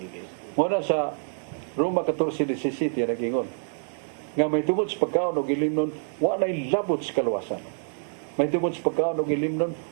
Muna sa Roma 14:17 nagingon nga may tungod sa pagkaon og ilimnon wa nay labot sa kaluwasan. May tungod sa pagkaon og ilimnon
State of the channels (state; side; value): silent; left; 55 dB below the other